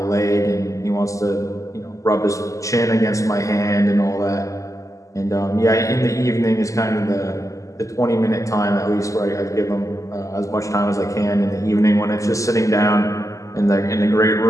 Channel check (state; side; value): late; right; 0.16 ms